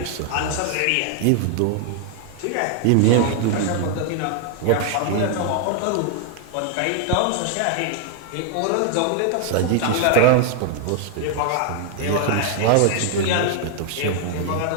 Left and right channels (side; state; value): both; different; correlation 0.00